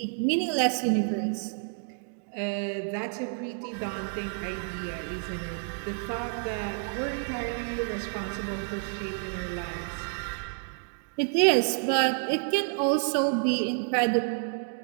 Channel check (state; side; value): silent; left; 55 dB below the other